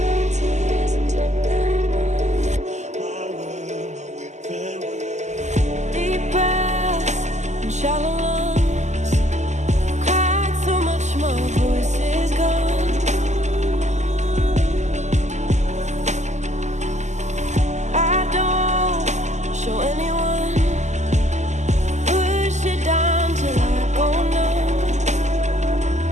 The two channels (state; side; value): late; left; 0.34 ms